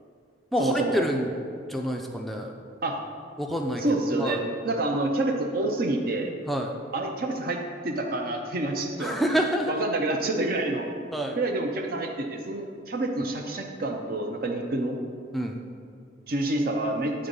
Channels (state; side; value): normal; both; correlation 0.47